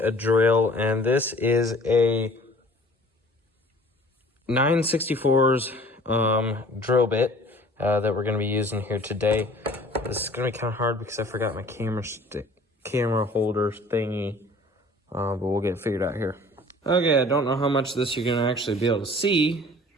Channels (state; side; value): normal; both; correlation 0.49